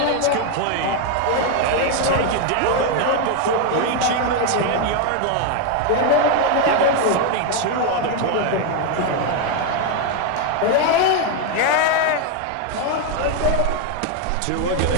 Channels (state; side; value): different; both; correlation 0.01